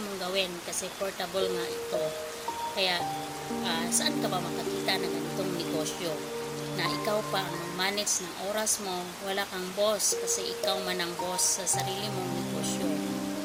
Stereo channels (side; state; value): both; identical; correlation 1.00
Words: mong gawin kasi portable nga ito. Kaya saan ka ba makakita ng ganitong negosyo na ikaw pa ang manage ng oras mo, wala kang boss kasi ikaw man ang boss sa sarili mong negosyo.